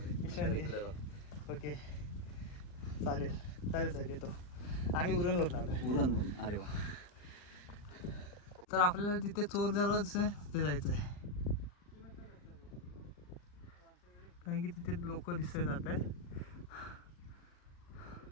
ओके चालेल साहेब, येतो. आम्ही उरणवरून आलो. अरे वा. तर आपल्याला तिथे चोर दरवाजा दिसतोय, तिथे जायचं आहे. कारण की तिथे लोक दिसत जात आहेत.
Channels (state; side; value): late; right; 39 ms